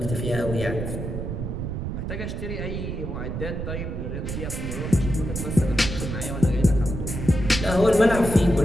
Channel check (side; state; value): right; noise; rumble, 4 dB below the sound